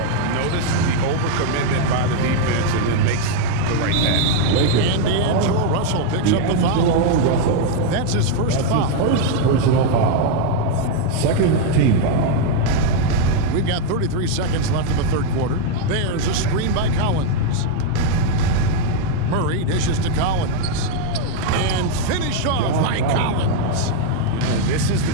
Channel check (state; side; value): different; both; correlation 0.01